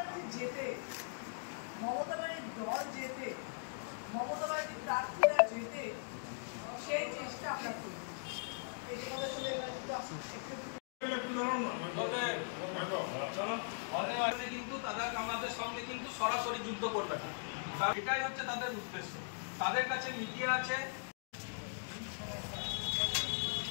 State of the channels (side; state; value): right; silent; digital silence